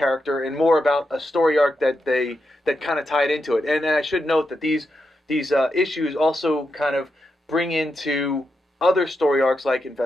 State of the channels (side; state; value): both; normal; correlation 0.85